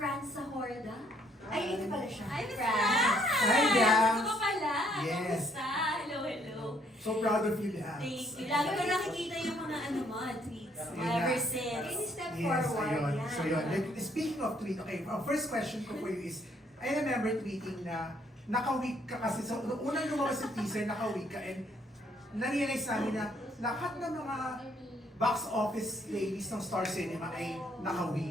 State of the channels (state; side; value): normal; both; correlation 0.68